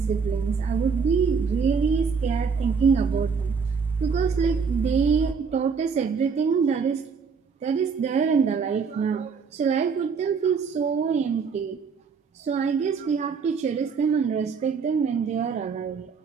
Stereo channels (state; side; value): quieter; left; 5.6 dB